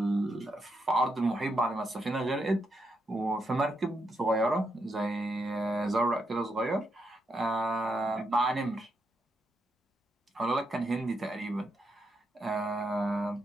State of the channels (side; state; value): both; normal; correlation 0.81